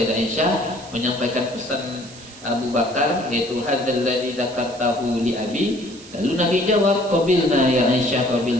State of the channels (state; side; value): noise; right; hiss, 19 dB below the sound